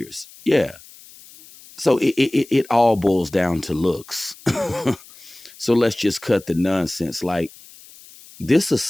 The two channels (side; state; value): left; noise; hiss, 22 dB below the sound